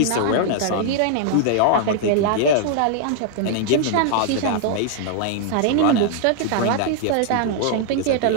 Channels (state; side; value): different; both; correlation -0.01